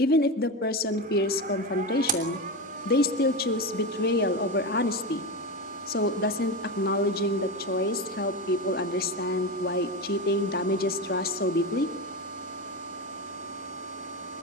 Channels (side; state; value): both; normal; correlation 0.19